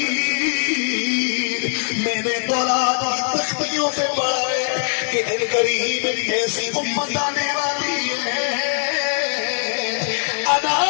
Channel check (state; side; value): silent; right; digital silence